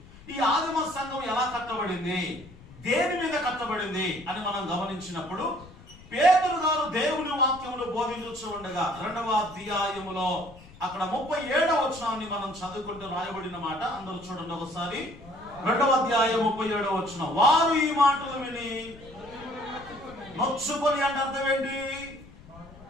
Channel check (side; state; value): left; noise; rumble, 20 dB below the sound